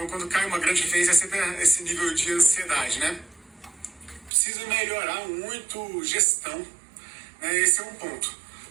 quando cai uma grande referência, é sempre esse nível de ansiedade, né? Precisa melhorar muito gestão, né? Esse é um ponto,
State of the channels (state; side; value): drops out; left; at 4.3 s